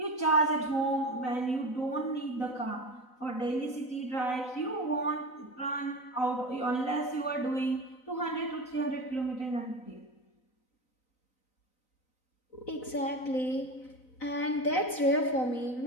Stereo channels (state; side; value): late; right; 4.0 ms